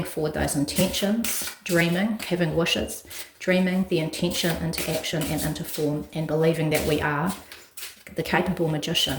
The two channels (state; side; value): identical; both; correlation 1.00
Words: forward those intentions, dreaming, having wishes, dreaming the intention into action and into form, and believing that we are the capable